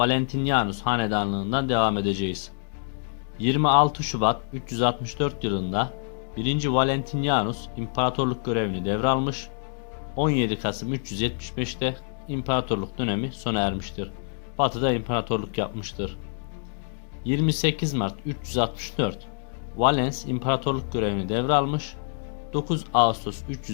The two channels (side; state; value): right; silent; digital silence